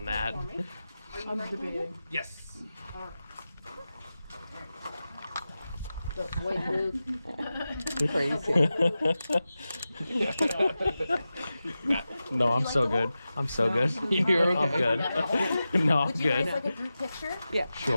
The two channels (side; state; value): both; inverted; correlation -0.93